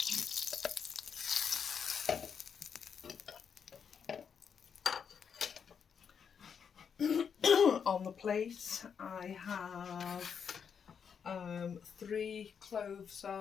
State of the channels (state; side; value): quieter; right; 7.0 dB